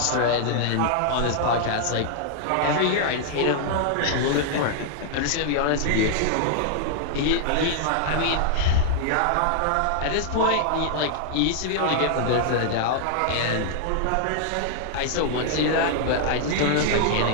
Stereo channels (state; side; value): different; both; correlation -0.01